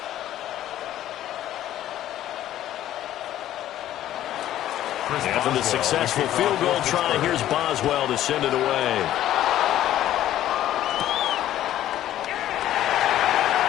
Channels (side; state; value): right; quieter; 12.7 dB